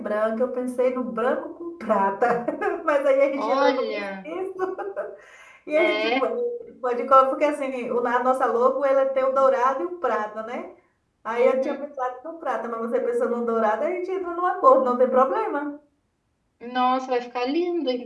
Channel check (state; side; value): identical; both; correlation 1.00